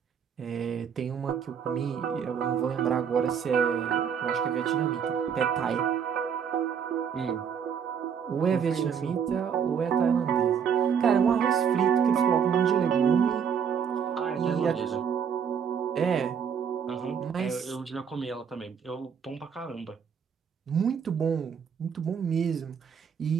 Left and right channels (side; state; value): left; quieter; 7.4 dB